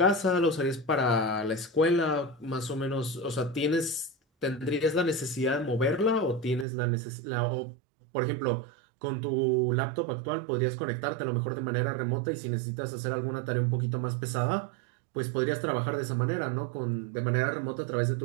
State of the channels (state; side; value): drops out; left; at 6.7 s